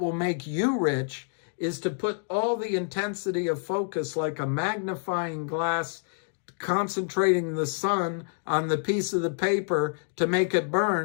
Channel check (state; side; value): silent; right; digital silence